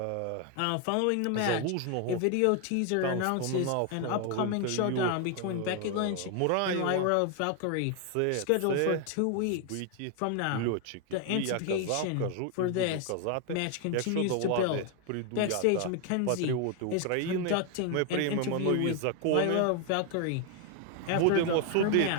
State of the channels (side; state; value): both; different; correlation 0.01